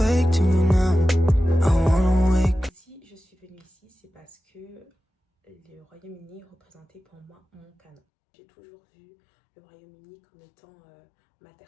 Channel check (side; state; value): right; drops out; at 8.0 s